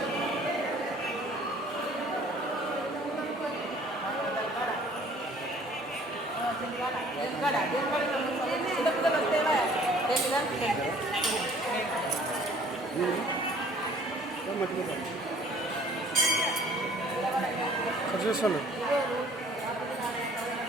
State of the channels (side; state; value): both; normal; correlation 0.54